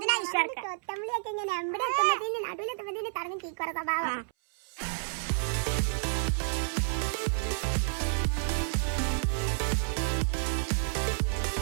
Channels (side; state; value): left; silent; 58 dB below the other